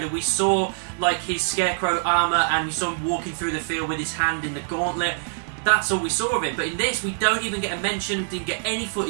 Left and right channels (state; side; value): silent; left; digital silence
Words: we saw like his Scarecrow armor, and we saw him walking through the field with his hand in the gauntlet. That's all we saw of it. But in this, we don't even get a mention. Didn't get any